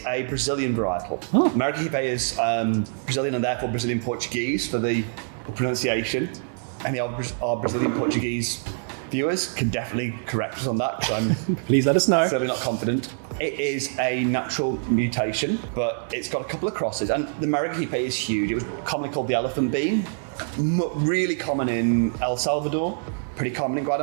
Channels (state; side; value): silent; left; digital silence